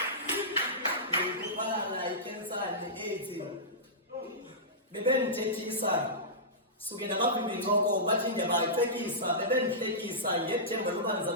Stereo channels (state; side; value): normal; both; correlation -0.17